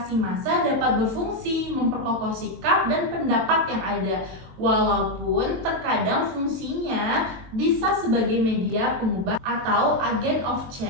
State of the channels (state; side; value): late; left; 23 ms